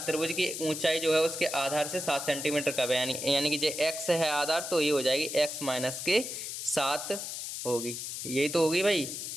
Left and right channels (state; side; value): noise; left; hiss, 6 dB below the sound